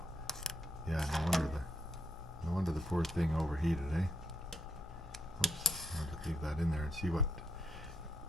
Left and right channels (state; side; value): normal; both; correlation 0.75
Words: yeah, no wonder the poor thing overheated, eh? Oops, I'll just leave that in there and see